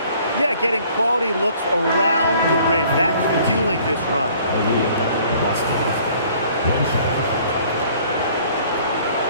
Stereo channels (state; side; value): inverted; both; correlation -0.56